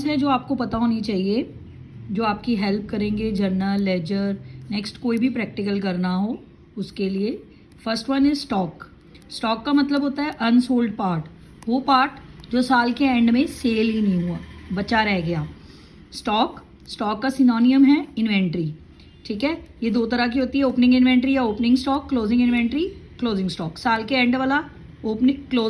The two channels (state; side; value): identical; both; correlation 1.00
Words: हैं जो आपको पता होनी चाहिए, जो आपकी हेल्प करेंगे जर्नल, लेजर, नेक्स्ट कोई भी प्रैक्टिकल करना हो उसके लिए. First one is stock. Stock का मतलब होता है अनसोल्ड पार्ट, वो पार्ट जो साल के एंड में सेल ही नहीं हुआ, बचा रह गया. स्टॉक का सिनोनियम है इन्वेंट्री. ठीक है, ये दो तरह की होती है, ओपनिंग इन्वेंट्री या opening stock, closing inventory, closing stock. साल के एंड वाला ओपनिंग